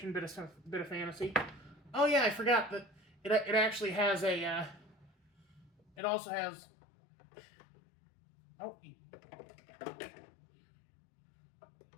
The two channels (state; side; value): drops out; right; at 5.9 s